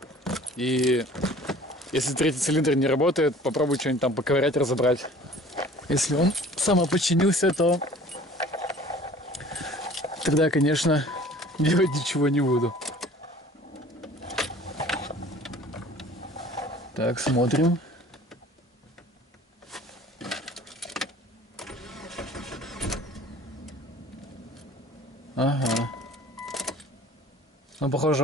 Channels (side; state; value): both; normal; correlation 0.48